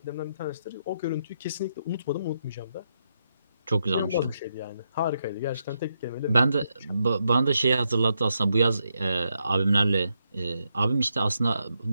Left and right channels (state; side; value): inverted; both; correlation -0.81